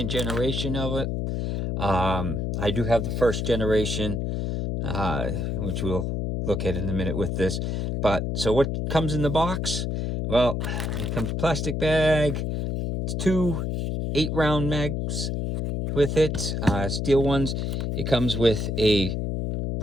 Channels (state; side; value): noise; left; hum, 1 dB below the sound